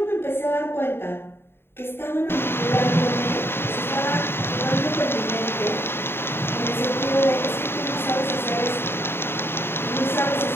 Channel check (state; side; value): late; right; 0.11 ms